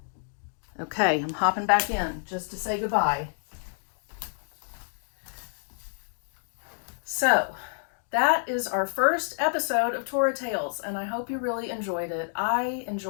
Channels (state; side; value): silent; right; digital silence